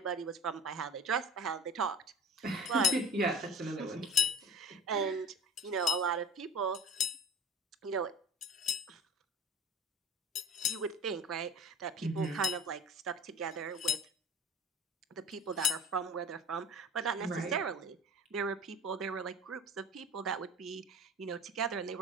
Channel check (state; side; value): normal; both; correlation 0.37